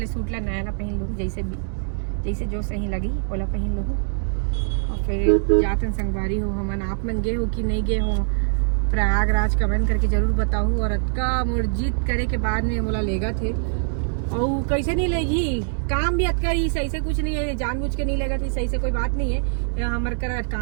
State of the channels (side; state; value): left; silent; digital silence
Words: सूट ला नया ला पहन लूँ, जैसे जो सही लगी ओला पहन लूँ। और फिर जातन संगवारी हो हमन, आप मन गे हो कि नहीं गे हो प्रयागराज, कमेंट करके जरूर बताओ। और अतका मुर्जित करे के बाद में बोला लेगा थे और कैसे नहीं लेगी, काम भी अतका ही सही से कुछ नहीं है, जानबूझ के नहीं लेगा थी सही से कोई बात नहीं है। हमारे कर